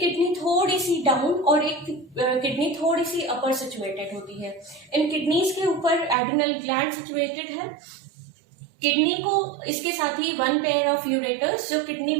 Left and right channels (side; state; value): left; drops out; at 6.2 s